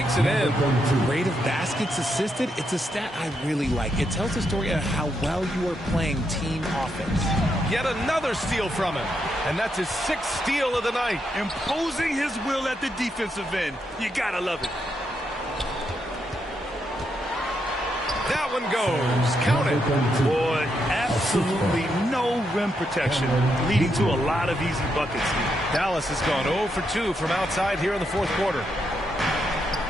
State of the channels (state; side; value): normal; both; correlation 0.80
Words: it in. Rate of baskets assisted, it's a stat I really like. It tells the story of how well you are playing team offense. Yet another steal from him. And that's his 6th steal of the night. Imposing his will at the defensive end. You gotta love it. That one goes. Count it. Boy, absolutely no rim protection, leading to a lot of easy buckets. Dallas has gone 0 for 2 from outside here in the fourth quarter.